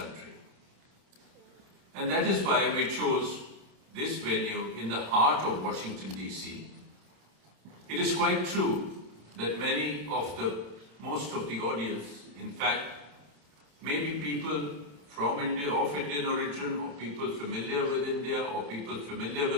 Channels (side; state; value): left; late; 28 ms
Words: And that is why we chose this venue in the heart of Washington, DC. It is quite true that most of the audience, in fact, may be people from India, of Indian origin, or people familiar with India, or people familiar